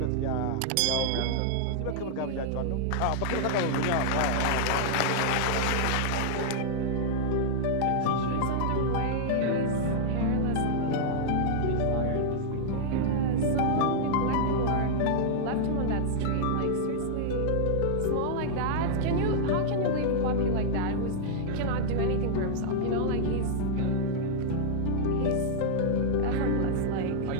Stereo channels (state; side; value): different; both; correlation -0.01